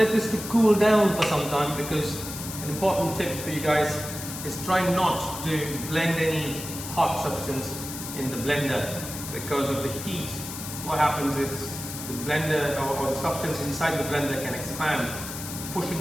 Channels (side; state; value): left; noise; hiss, 9 dB below the sound